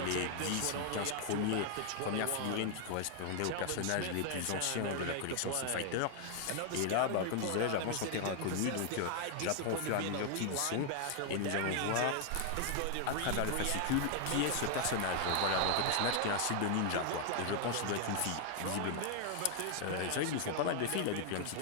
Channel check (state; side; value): different; both; correlation 0.00